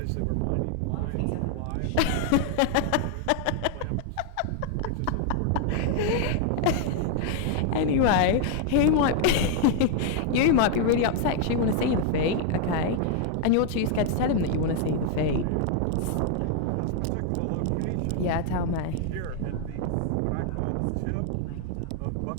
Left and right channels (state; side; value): different; both; correlation 0.00